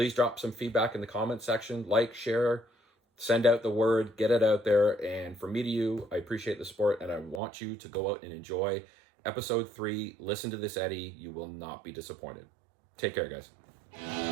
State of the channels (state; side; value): drops out; left; at 7.4 s